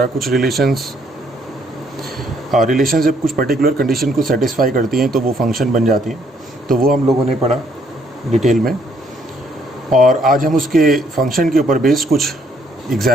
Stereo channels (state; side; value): normal; both; correlation 0.68